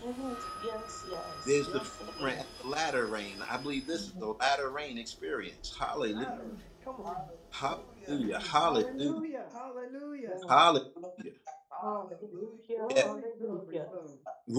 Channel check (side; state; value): both; identical; correlation 1.00